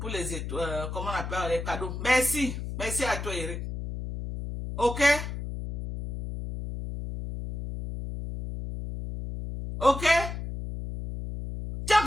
comment on appelle les cadeaux. Merci. Merci à toi Eric. Ok? Ok? Tu as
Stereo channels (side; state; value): left; noise; hum, 6 dB below the sound